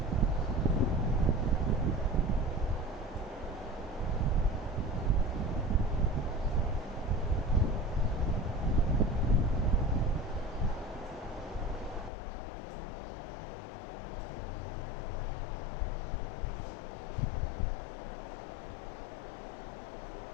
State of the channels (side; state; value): right; drops out; at 12.1 s